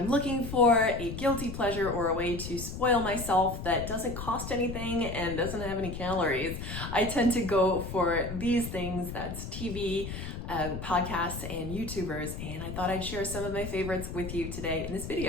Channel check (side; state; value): left; noise; rumble, 7 dB below the sound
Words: looking for a guilty pleasure or a way to spoil myself that doesn't cost anything and doesn't have any calories, I tend to go for these things. That's TV, podcasts, and YouTubers, and I thought I'd share some of my favorites with you today in this